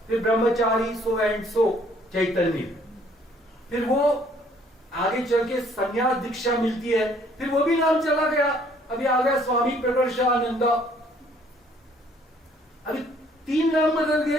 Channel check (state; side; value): normal; both; correlation 0.61